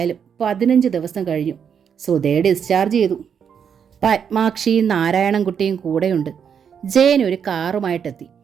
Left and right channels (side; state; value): left; quieter; 7.5 dB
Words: 15 ദിവസം കഴിഞ്ഞു. സുധയെ ഡിസ്ചാർജ് ചെയ്തു. പത്മാക്ഷിയും നാരായണൻകുട്ടിയും കൂടെയുണ്ട്. ജയൻ ഒരു കാറുമായിട്ടെത്തി.